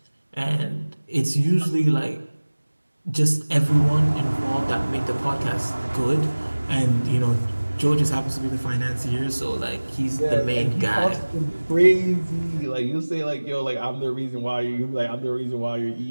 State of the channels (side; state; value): both; inverted; correlation -1.00